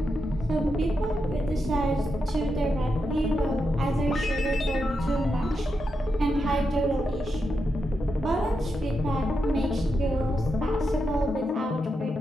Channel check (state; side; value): normal; both; correlation 0.86